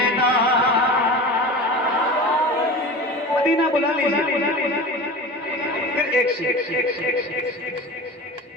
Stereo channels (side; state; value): both; normal; correlation 0.33